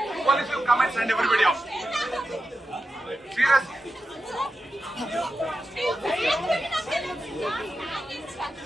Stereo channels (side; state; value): both; normal; correlation 0.90